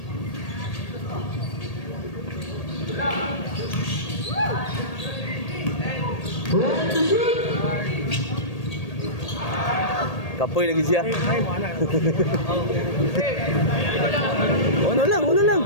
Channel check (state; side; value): late; right; 1.8 ms